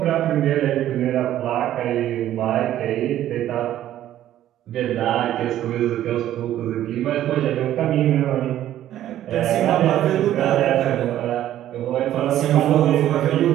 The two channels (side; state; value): left; quieter; 12.4 dB